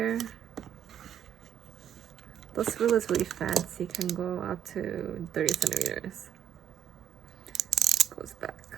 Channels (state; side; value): quieter; left; 9.6 dB